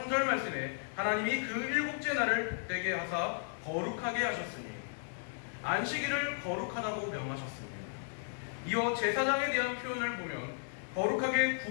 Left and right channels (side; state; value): right; silent; 55 dB below the other